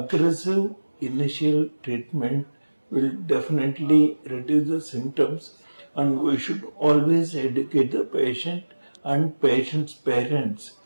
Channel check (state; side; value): inverted; both; correlation -1.00